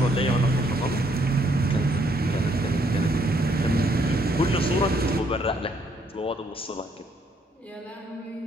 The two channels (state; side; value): normal; both; correlation 0.70